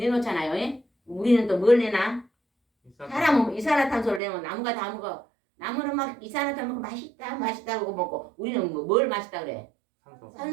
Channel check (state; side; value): drops out; left; at 4.2 s